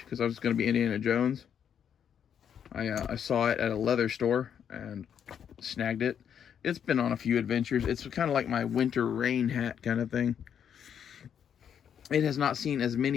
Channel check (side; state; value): right; quieter; 8.4 dB